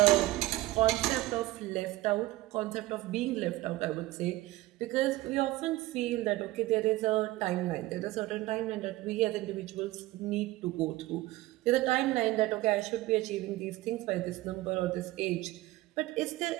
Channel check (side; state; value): left; quieter; 18.0 dB